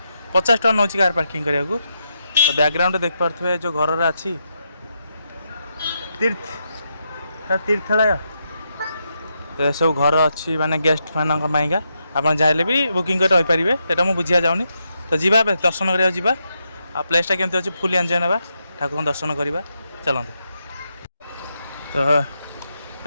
50 टका नौ कार पार्किंग करने को तो बैकग्राउंड देख पारे जो घर अच्छी तीर्थालय तो सब घर अच्छी माने गेस्ट मानका आप चाहे भी बुकिंग कर रही पारे ये मुझे बुझा जाऊनी तो जीवा दर्शन करा जा आ प्लेसटा केमती अच्छी फुल एंजॉय ना ठाकुर दर्शन करवा चलते तो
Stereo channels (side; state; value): both; inverted; correlation -0.82